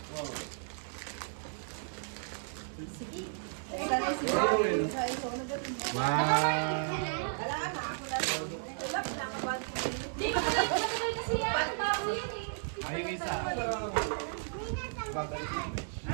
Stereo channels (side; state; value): left; silent; digital silence